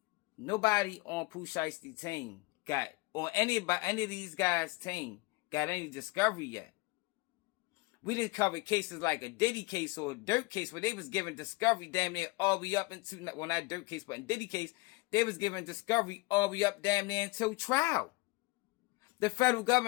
Nobody on Pooh Shiesty team or any of these guys' team got any discovery yet. We didn't cover cases like a Diddy case or a Dirt case where they was giving discovery damn near all the way up into, well, not Dirt case, but in Diddy case, they was giving discovery all the way up damn near until trial. The federal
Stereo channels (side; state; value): right; quieter; 23.9 dB